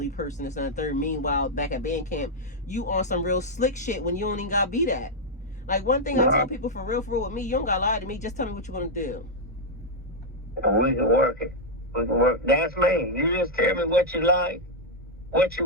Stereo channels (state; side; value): normal; both; correlation -0.03